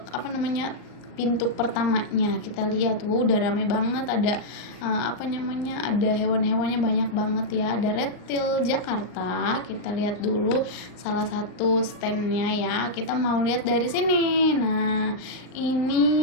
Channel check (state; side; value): late; right; 39 ms